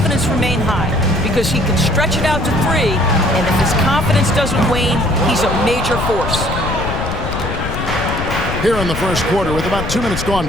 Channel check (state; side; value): noise; left; rumble, 5 dB below the sound